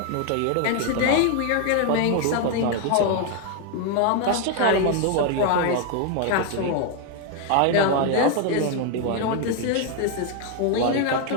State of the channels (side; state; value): both; different; correlation 0.01